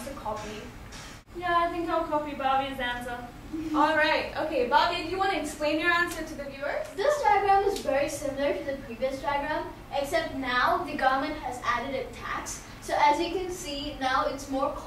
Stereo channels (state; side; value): identical; both; correlation 1.00